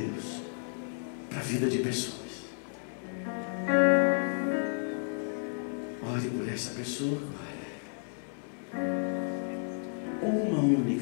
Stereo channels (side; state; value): right; silent; digital silence